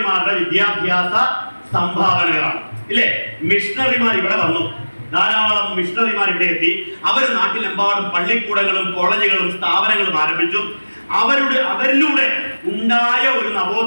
വിദ്യാഭ്യാസ സംഭാവനകളാണ്. ഇല്ലേ? മിഷണറിമാർ ഇവിടെ വന്നു, ധാരാളം മിഷണറിമാർ ഇവിടെ എത്തി. അവർ നാട്ടിലെമ്പാടും പള്ളിക്കൂടങ്ങളും കോളേജുകളും സ്ഥാപനങ്ങളും ആരംഭിച്ചു. അവരിലൂടെ ഉണ്ടായ ഒരു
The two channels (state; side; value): inverted; both; correlation -1.00